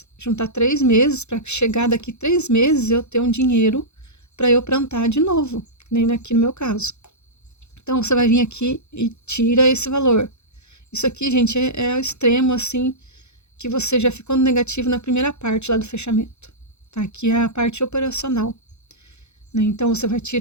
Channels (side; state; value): right; late; 0.81 ms